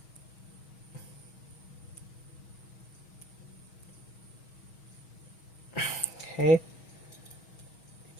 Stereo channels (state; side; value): late; right; 6.3 ms